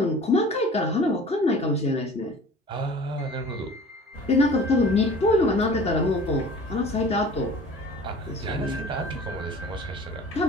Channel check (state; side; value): normal; both; correlation 0.44